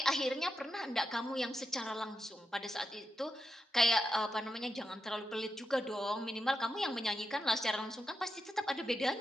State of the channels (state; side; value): normal; both; correlation 0.86